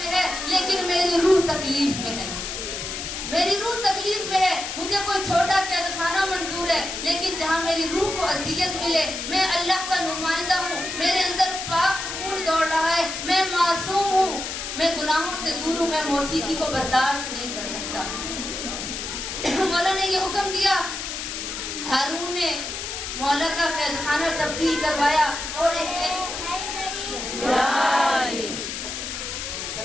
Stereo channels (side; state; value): left; noise; hiss, 6 dB below the sound